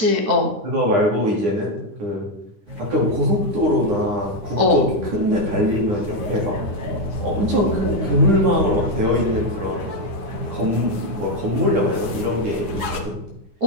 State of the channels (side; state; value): left; late; 9.6 ms